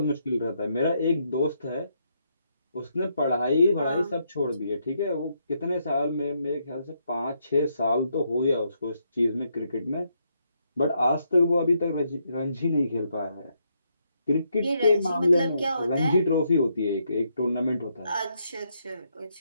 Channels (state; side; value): inverted; both; correlation -0.77